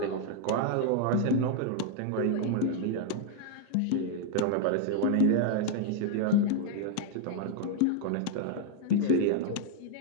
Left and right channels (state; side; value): different; both; correlation 0.00